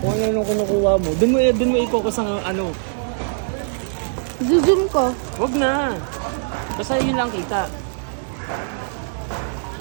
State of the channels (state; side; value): silent; left; digital silence